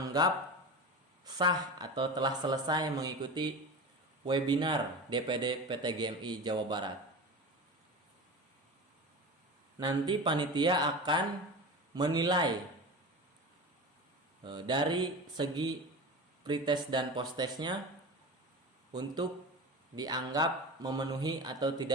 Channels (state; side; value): normal; both; correlation 0.29